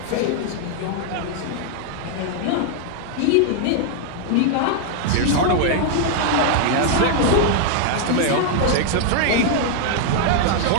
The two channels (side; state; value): both; different; correlation 0.00